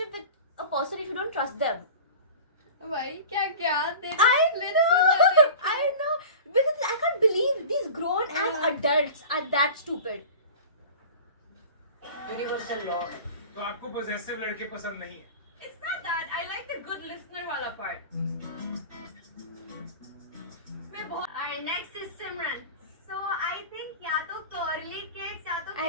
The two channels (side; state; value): both; inverted; correlation -0.36